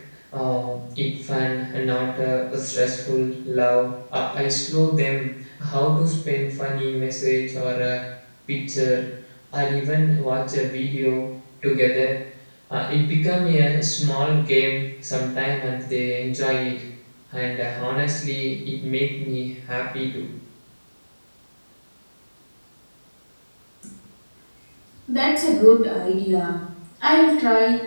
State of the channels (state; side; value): inverted; both; correlation -1.00